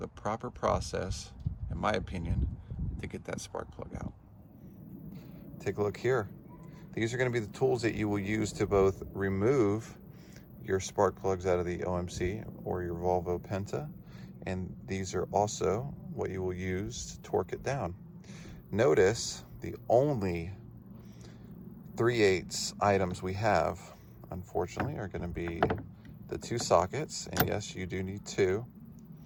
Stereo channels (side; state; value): both; identical; correlation 1.00